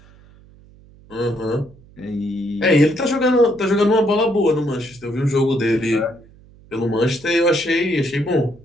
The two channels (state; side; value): noise; right; hum, 25 dB below the sound